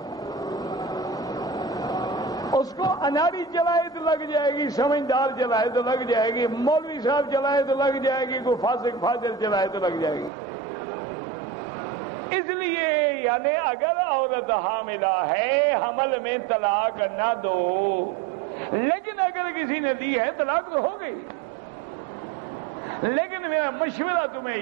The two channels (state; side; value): drops out; left; at 10.3 s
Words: اس کو اناڑی چلائے تو لگ جائے گی، سمجھدار چلائے تو لگ جائے گی، مولوی صاحب چلائے تو لگ جائے گی، کوئی فاسق فاضل چلائے تو لگ جائے گی. اس لیے یعنی اگر عورت حاملہ ہے، حمل میں طلاق نہ دو. لیکن اگر کسی نے دی ہے طلاق تو ہو گئی. لیکن میرا مشورہ تمہیں